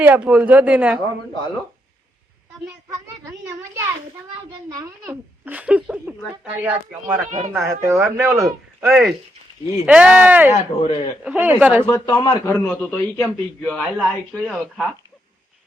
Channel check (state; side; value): normal; both; correlation 0.79